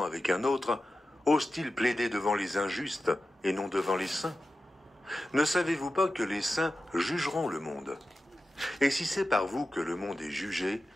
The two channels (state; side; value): normal; both; correlation 0.93